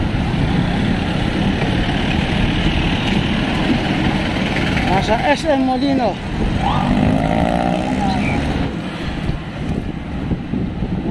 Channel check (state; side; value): identical; both; correlation 1.00